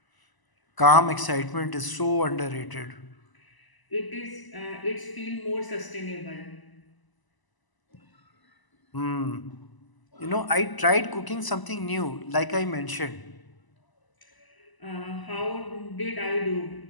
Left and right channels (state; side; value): late; right; 1.0 ms